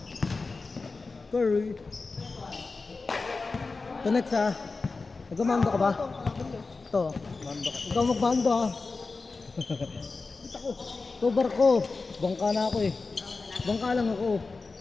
Curry. Ito next ha. Nagmamando ka ba? Ito. Ikaw magmando ha. Ito barko. Bangka na ako eh. Bangka lang ako.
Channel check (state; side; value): quieter; right; 4.0 dB